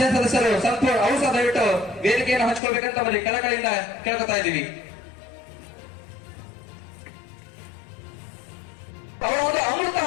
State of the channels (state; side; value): drops out; right; at 2.6 s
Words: ಸದಸ್ಯರು ಸಂಪೂರ್ಣ ಔಷಧ ದಯವಿಟ್ಟು ವೇದಿಕೆಯನ್ನು ಹಂಚ್ಕೊಳ್ಬೇಕಂತ ನಮ್ಮಲ್ಲಿ ಕಳಕಳಿಯಿಂದ ಕೇಳ್ಕೊತಾ ಇದ್ದೀವಿ. ಅವರ ಒಂದು ಅಮೃತ